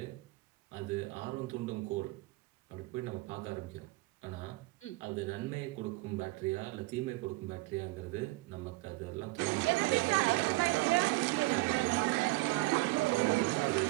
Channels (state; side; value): quieter; left; 22.2 dB